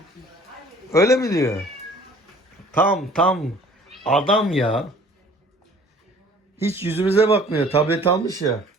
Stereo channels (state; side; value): normal; both; correlation 0.52